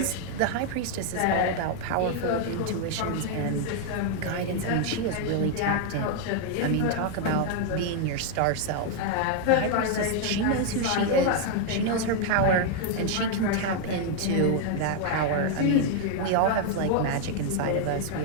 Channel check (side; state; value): both; different; correlation 0.00